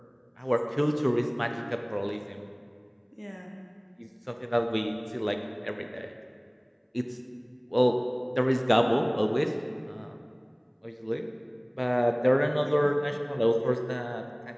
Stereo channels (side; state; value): both; identical; correlation 1.00